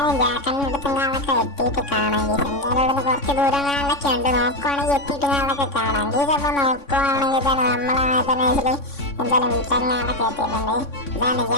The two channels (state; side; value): late; right; 3.6 ms